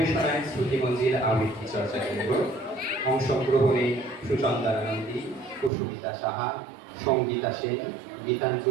শ্রুতিমঞ্জিল আবৃত্তি চর্চা কেন্দ্র, অংশগ্রহণে সুচন্দ্রা নন্দী, কুসুমিতা সাহা, সঙ্গীতা সেন,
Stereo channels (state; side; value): drops out; left; at 5.7 s